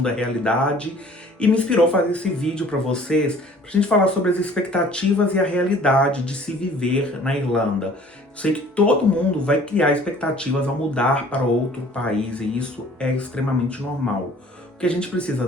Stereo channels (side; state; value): both; normal; correlation 0.51